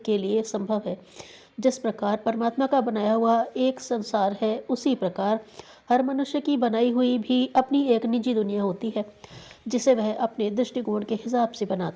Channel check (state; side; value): identical; both; correlation 1.00